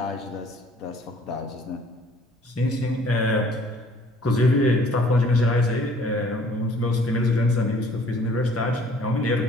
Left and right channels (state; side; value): normal; both; correlation 0.55